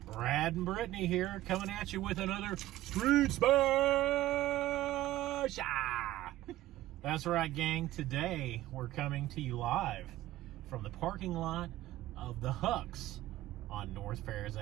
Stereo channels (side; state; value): left; quieter; 15.3 dB